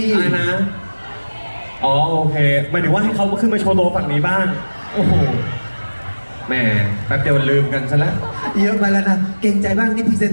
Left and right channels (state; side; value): inverted; both; correlation -1.00